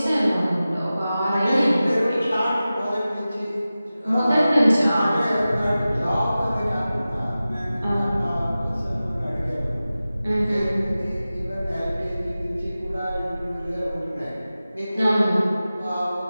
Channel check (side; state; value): both; inverted; correlation -0.95